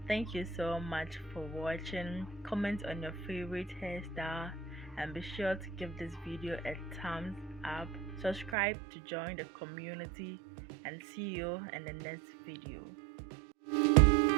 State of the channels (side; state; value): left; drops out; at 8.6 s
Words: Thank you so much for watching. Comment on your favorite hairstyle and be sure to give this video a thumbs up. Subscribe to join the community and see you in the next video.